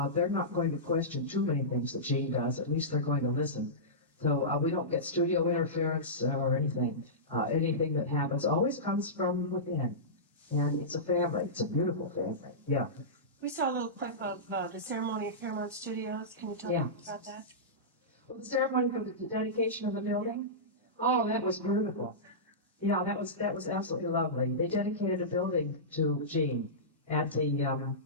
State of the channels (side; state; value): both; normal; correlation -0.17